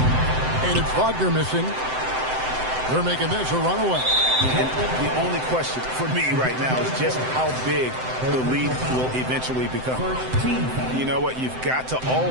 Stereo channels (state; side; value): late; left; 7.8 ms